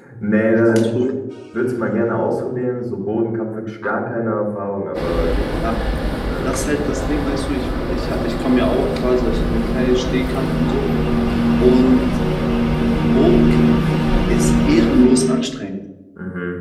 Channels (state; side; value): identical; both; correlation 1.00